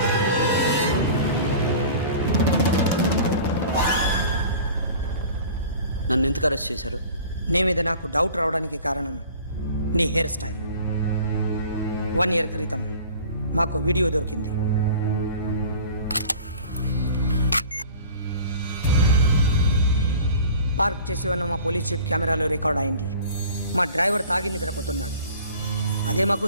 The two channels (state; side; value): inverted; both; correlation -0.44